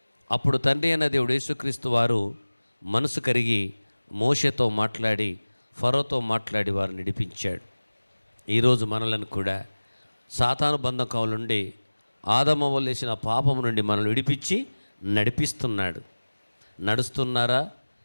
అప్పుడు తండ్రి అయిన దేవుడు యేసుక్రీస్తు వారు మనసు కరిగి మోషేతో మాట్లాడి ఫరోతో మాట్లాడి వారు నడిపించాడు. ఈరోజు మనలను కూడా సాతాను బంధకం నుండి, ఆదమ వల్లేసిన పాపం నుండి మనల్ని విడిపించి నడిపిస్తున్నాడు. నడుస్తున్నారా?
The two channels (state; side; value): inverted; both; correlation -1.00